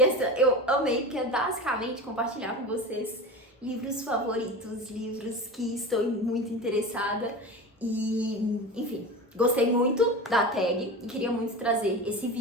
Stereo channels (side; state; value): both; normal; correlation 0.29